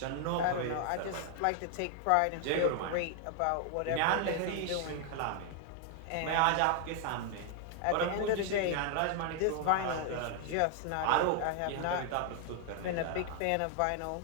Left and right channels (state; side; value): different; both; correlation 0.00